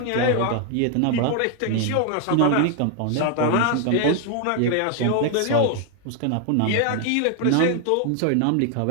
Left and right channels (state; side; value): different; both; correlation 0.00